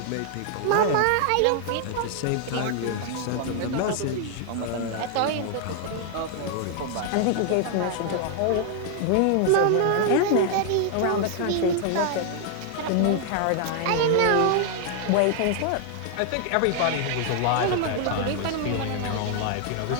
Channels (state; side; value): different; both; correlation 0.00